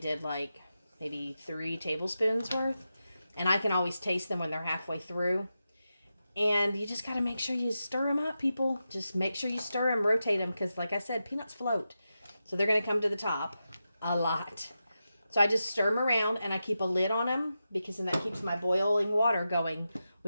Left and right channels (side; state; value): both; inverted; correlation -0.90